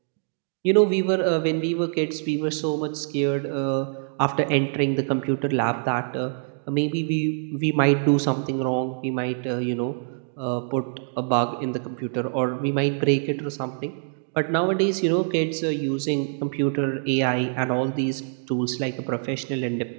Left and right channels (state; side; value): silent; left; digital silence